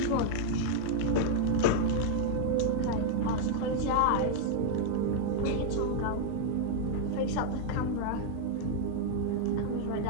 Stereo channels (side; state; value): both; different; correlation 0.00